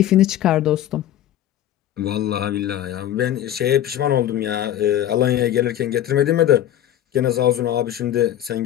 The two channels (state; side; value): quieter; right; 11.9 dB